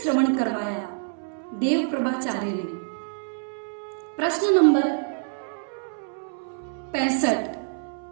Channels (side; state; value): left; silent; 61 dB below the other